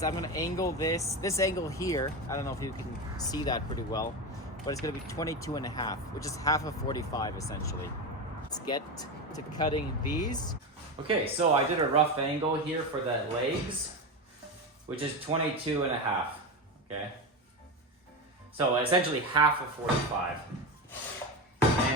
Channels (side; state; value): both; normal; correlation 0.18